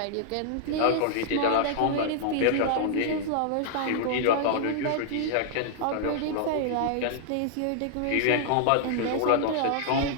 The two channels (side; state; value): both; different; correlation -0.01